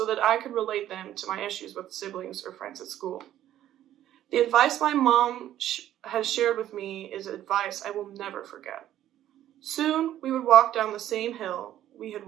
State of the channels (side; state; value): left; quieter; 12.3 dB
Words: that I could relate them to my issues with siblings or friends at school. The advice my mom has shared with me is advice I will never forget. Soon, we would walk down the same hill we had